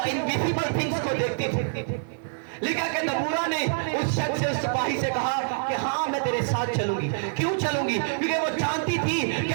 इनविजिबल थिंग्स को देखती थी। लिखा कि दबूरा ने उस शख्स से, उस सिपाही से कहा कि हाँ मैं तेरे साथ चलूंगी। क्यों चलूंगी? क्योंकि वो जानती थी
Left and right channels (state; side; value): silent; left; 55 dB below the other